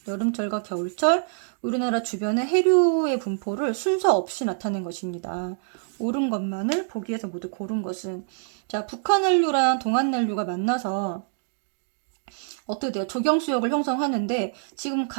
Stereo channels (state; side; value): silent; left; digital silence